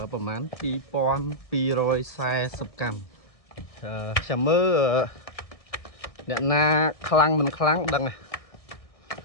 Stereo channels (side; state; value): right; late; 1.7 ms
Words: ប្រហែល2240កម្មចាំមើលអ្នកណាខ្លាំងមិនខ្លាំងដឹង